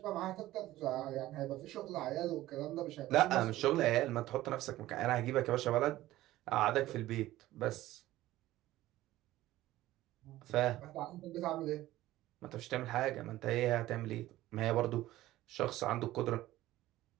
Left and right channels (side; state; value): left; quieter; 15.8 dB